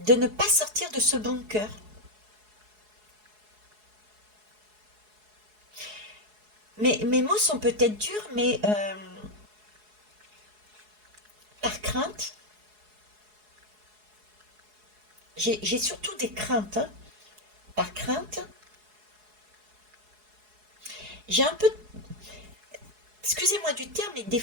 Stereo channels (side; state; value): left; late; 4.7 ms